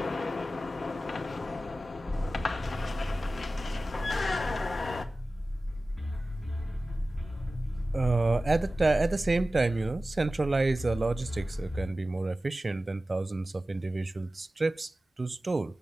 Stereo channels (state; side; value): normal; both; correlation 0.96